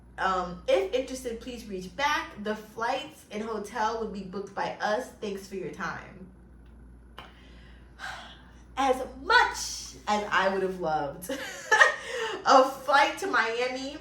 If interested, please reach back. The flights and hotel would be booked by us. Thanks for your time." As much as I would have loved a flight to Miami,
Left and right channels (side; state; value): both; identical; correlation 1.00